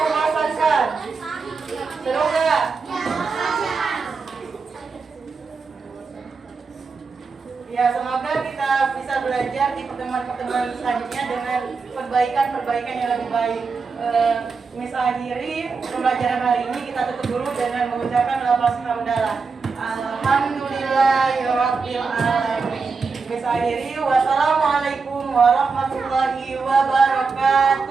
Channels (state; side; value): quieter; left; 4.8 dB